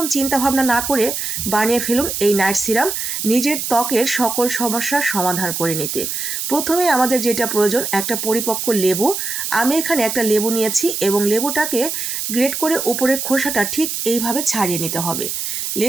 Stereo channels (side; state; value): right; noise; hiss, 3 dB below the sound